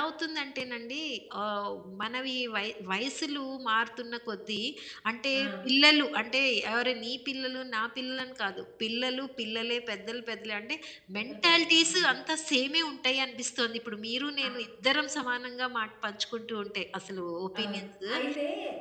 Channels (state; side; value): identical; both; correlation 1.00